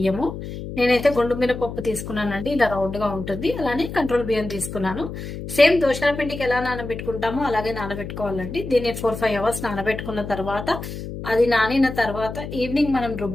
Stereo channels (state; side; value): noise; left; hum, 8 dB below the sound